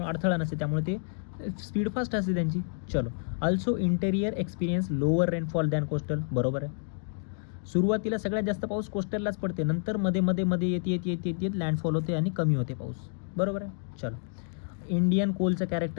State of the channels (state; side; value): silent; right; 58 dB below the other